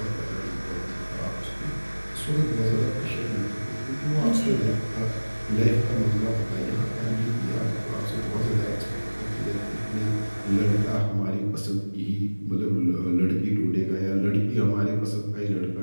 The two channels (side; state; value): both; inverted; correlation -1.00